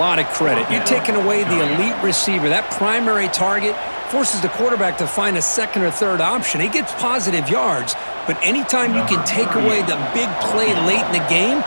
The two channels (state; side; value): inverted; both; correlation -1.00